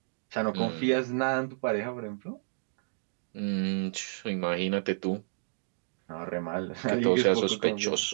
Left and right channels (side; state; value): left; silent; digital silence